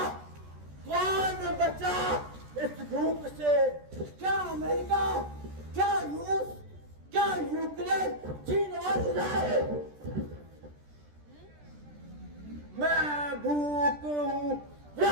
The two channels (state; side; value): late; left; 14 ms